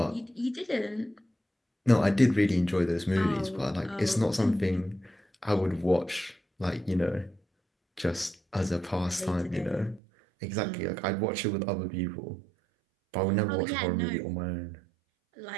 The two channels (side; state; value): left; drops out; at 10.0 s